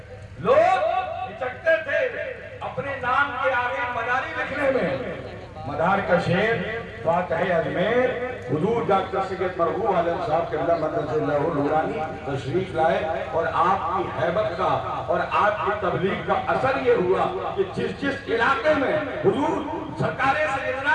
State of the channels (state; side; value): identical; both; correlation 1.00